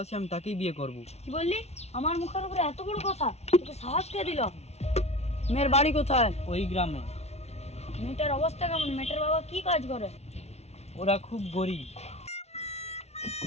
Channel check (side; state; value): right; late; 0.31 ms